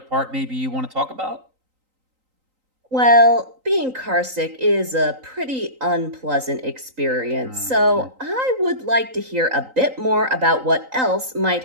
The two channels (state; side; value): late; left; 3.9 ms